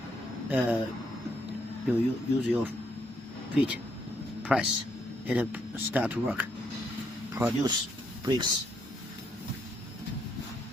You use your feet, press it, start to work. Produce brakes.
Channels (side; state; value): both; normal; correlation 0.74